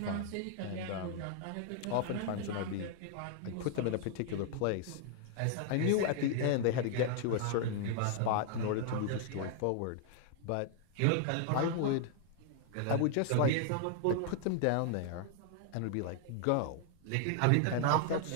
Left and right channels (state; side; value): different; both; correlation 0.00